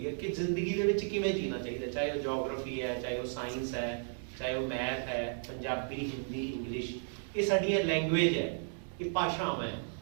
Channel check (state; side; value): silent; left; digital silence